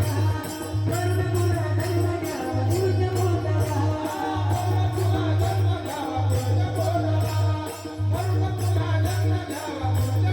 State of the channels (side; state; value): both; identical; correlation 1.00